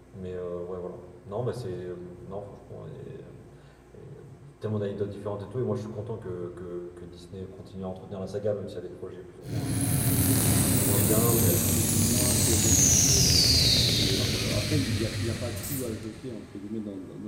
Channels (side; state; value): both; identical; correlation 1.00